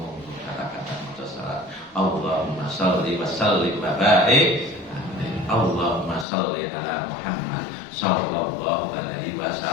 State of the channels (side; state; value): right; drops out; at 6.2 s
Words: kata-kata maca salat Allahumma shalli wa sallim wa barik Allahumma shalli ala Muhammad sallallahu alaihi